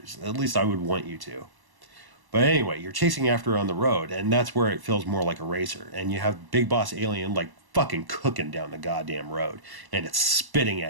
At least I would want you to. But anyway, you're chasing after her on the road, and that's where it feels more like a racer. And you have Big Boss Alien like fucking cooking down the goddamn road, and it's spitting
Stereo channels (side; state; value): left; late; 1.1 ms